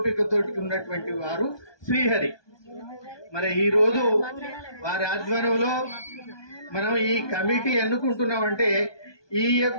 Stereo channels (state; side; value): late; right; 1.2 ms